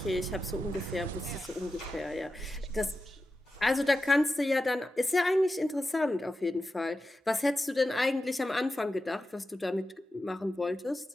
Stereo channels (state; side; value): normal; both; correlation 0.91